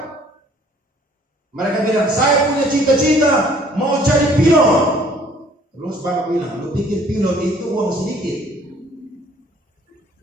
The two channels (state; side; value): normal; both; correlation 0.57